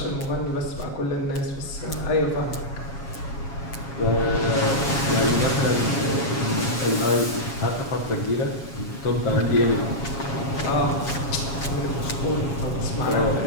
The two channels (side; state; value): right; late; 7.3 ms